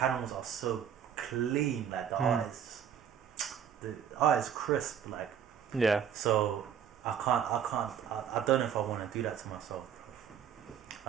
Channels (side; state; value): left; quieter; 8.6 dB